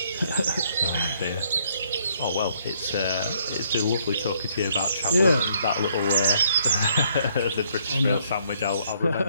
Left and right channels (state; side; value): inverted; both; correlation -0.67